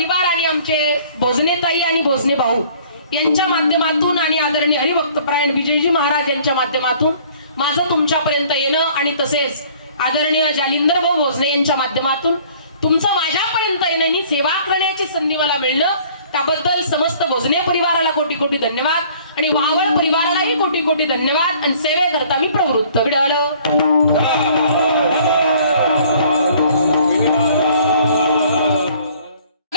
आणि आमचे भोजनेताई आणि भोजने भाऊ यांच्या माध्यमातून आणि आदरणीय हरिभक्तपरायण विजयजी महाराज यांच्या माध्यमातून माझं तुमच्यापर्यंत येणं आणि तसेच आदरणीय जालिंदर भाऊ भोजने यांच्या माध्यमातून तुमचं माझ्यापर्यंत येण्याची सेवा करण्याची संधी मला मिळणं, त्याबद्दल समस्त भोजने परिवाराला कोटी कोटी धन्यवाद आणि वाहवळ परिवारालाही कोटी कोटी धन्यवाद. आणि सेवेकरता मी प्रवृत्त. विडाल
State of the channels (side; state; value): both; inverted; correlation -0.54